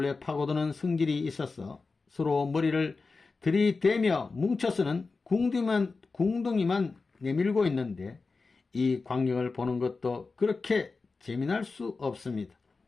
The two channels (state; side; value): quieter; right; 4.1 dB